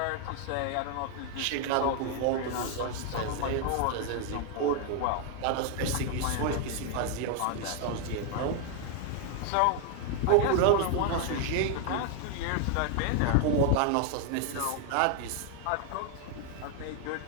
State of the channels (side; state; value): both; different; correlation 0.00